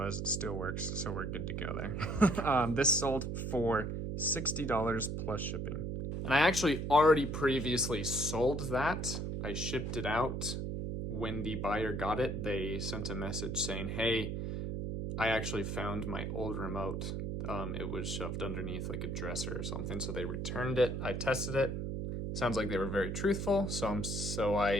It still works, so we're good to go there. This sold for $60 plus shipping. And I actually already previously sold that. I shipped it out. When the buyer got it, they sent a message saying, hey, I actually found my old remote. It was shoved underneath like a dresser or something, so they returned it. I tested it. Sounds like they were very truthful, so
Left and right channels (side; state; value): right; noise; hum, 3 dB below the sound